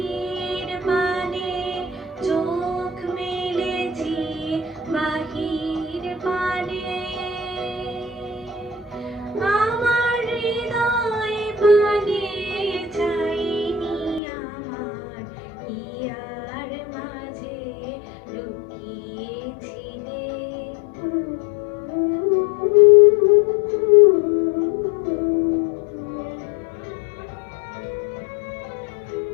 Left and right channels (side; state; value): right; drops out; at 14.2 s